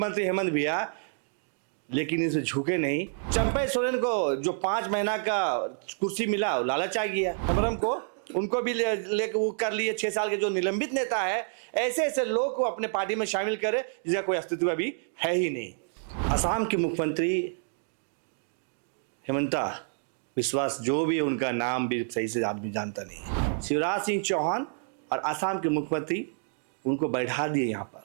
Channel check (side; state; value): left; silent; digital silence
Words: हेमंत भैया, लेकिन इसे झुके नहीं। चंपई सोरेन को जो 5 महीना का कुर्सी मिला लालच आ गया, अमरम को उनको भी लेकर वो कर लिए। 6 साल के जो निलंबित नेता है, ऐसे ऐसे लोग को अपने पार्टी में शामिल करे जिसका कोई अस्तित्व अभी है ही नहीं। असम के मुख्यमंत्री हेमंता विश्वास, जो भी उनका नाम भी सही से आदमी जानता नहीं है, शिवराज सिंह चौहान और असम के मुख्यमंत्री उनको बैठा दिए यहाँ पर